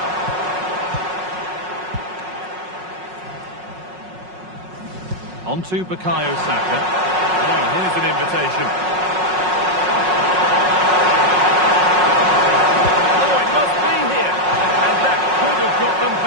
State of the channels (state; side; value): late; left; 5.5 ms